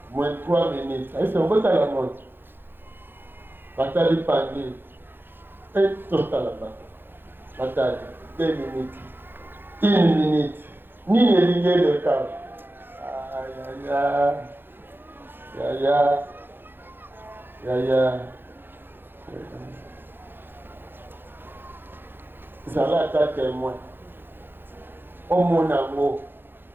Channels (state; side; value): late; left; 0.10 ms